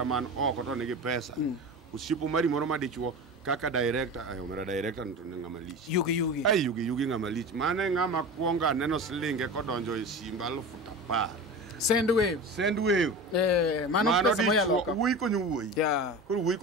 man oko to nigi pesa usipo Omari moro ma dichuo kaka director omera director to ngama lich yugi ngama lich mane ngama kuonga neno slinge kodonjo e simba 10,000 Sendwave mano dichuo wuoi konyo wuoi koro wuoi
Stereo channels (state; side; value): normal; both; correlation 0.30